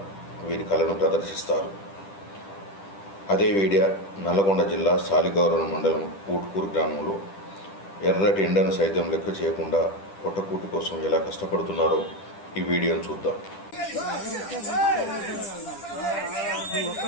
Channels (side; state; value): right; late; 10 ms